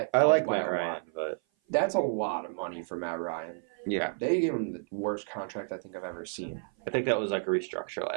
I like Matt Ryan, but that's a lot of money for Matt Ryan. Yeah, they gave him the worst contract I think I've ever seen. I think that was like a restructure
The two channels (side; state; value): left; silent; 56 dB below the other